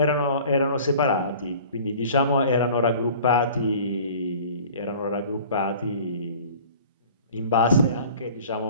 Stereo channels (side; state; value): both; inverted; correlation -0.46